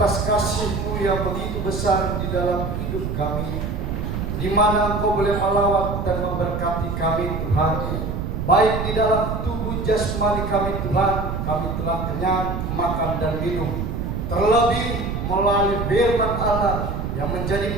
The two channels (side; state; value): right; noise; rumble, 3 dB below the sound